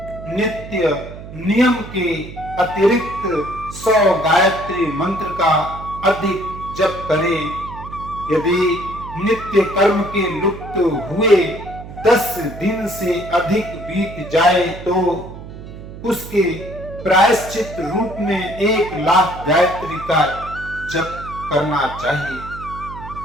नित्य नियम के अतिरिक्त 100 गायत्री मंत्र का अधिक जप करे। यदि नित्य कर्म के लुप्त हुए 10 दिन से अधिक बीत जाए तो उसके प्रायश्चित रूप में 1,00,000 गायत्री का जप करना चाहिए।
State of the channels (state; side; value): noise; right; hum, 13 dB below the sound